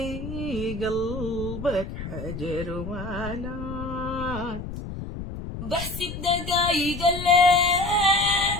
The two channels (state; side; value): noise; left; rumble, 8 dB below the sound